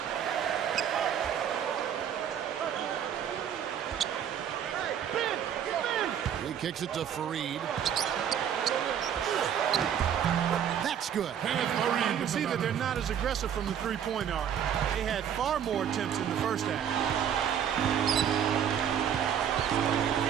He kicks it to Fareed. That's good. You can see that they're not as aggressive from the three-point arc. They had far more attempts in the first half.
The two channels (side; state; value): left; quieter; 9.0 dB